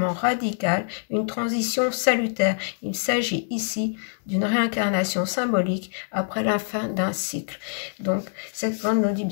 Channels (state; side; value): silent; right; digital silence